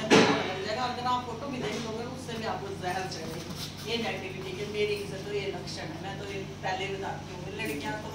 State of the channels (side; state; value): both; identical; correlation 1.00